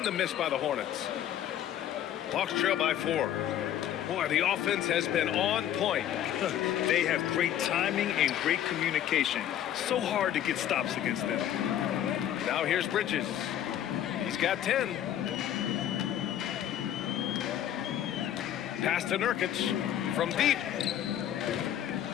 the miss by the Hornets. Hawks trail by 4. Boy, the offense has been on point. They have great timing and great communication. So hard to get stops against them. Now here's Bridges. He's got 10. Pass to Nurkic from deep.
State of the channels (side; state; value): right; quieter; 10.9 dB